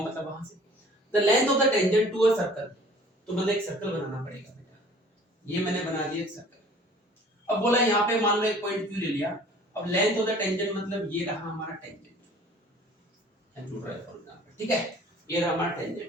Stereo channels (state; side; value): normal; both; correlation 0.50